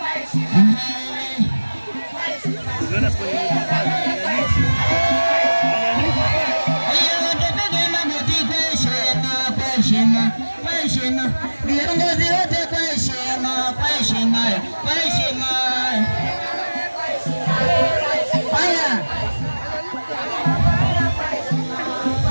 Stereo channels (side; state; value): both; inverted; correlation -1.00